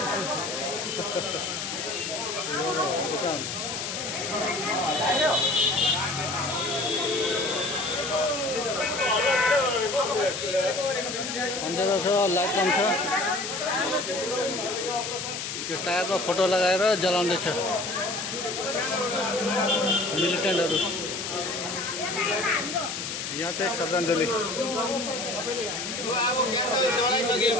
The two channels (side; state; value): left; noise; hiss, 5 dB below the sound